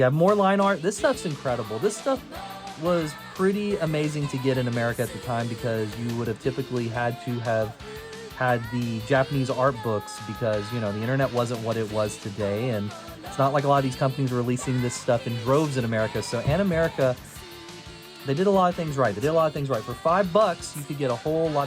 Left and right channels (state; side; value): identical; both; correlation 1.00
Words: have more line art. This stuff's incredible. This stuff was pretty amazing to get in America at the time because you would have typically had to have had the Japanese art books because, you know, the internet wasn't what it was today, and it's not like a lot of these companies were releasing this stuff in droves in America. So Animerica, they did a lot of things right. For $5, you could get a whole